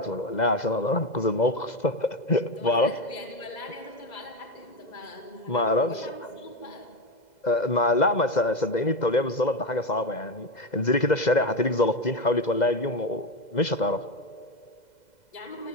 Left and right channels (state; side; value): late; right; 2.0 ms